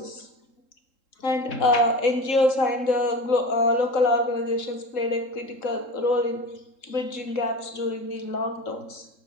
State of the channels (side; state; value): right; late; 3.7 ms